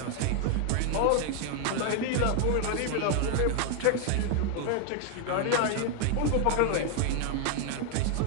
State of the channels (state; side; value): different; both; correlation 0.00